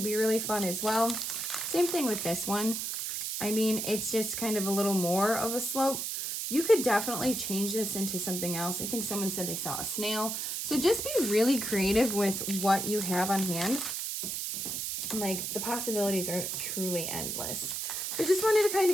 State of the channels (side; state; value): right; noise; hiss, 3 dB below the sound